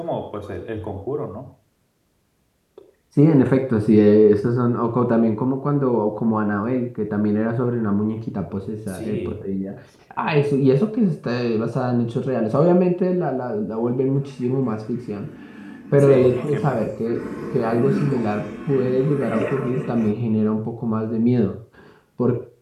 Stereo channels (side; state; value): both; identical; correlation 1.00